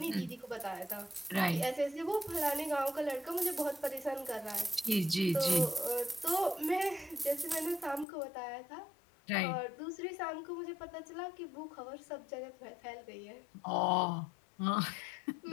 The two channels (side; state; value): right; drops out; at 8.1 s